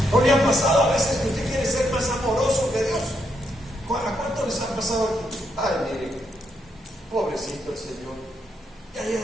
¿No le ha pasado a veces que usted quiere ser más amoroso que Dios? ¿A cuánto les ha pasado aquí? Ay, miren, pobrecito el Señor, ya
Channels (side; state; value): both; normal; correlation 0.78